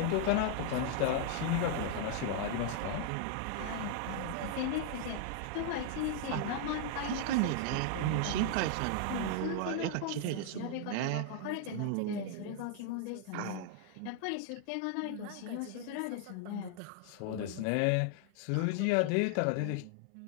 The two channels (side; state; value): both; different; correlation 0.00